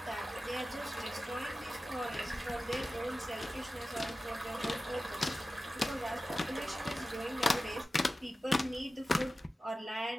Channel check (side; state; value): both; normal; correlation 0.94